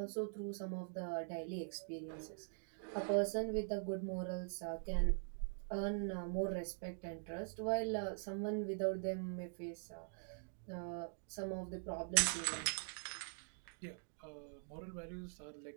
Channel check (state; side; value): silent; left; digital silence